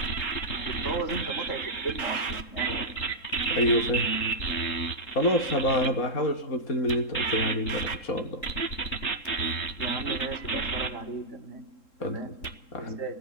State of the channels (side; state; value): right; late; 3.7 ms